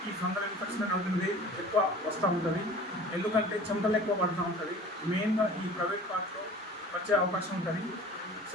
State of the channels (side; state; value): both; normal; correlation 0.43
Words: ఈ ఫంగల్ ఇన్ఫెక్షన్ అవుతుంది ఎక్కువ వస్తూ ఉంటుంది. ఎందుకంటే చెమటలు ఎక్కువ పడుతూ ఉంటుంది. మెయిన్గా ఈ ప్రైవేట్ పార్ట్లో వచ్చే అవకాశం ఉంటుంది.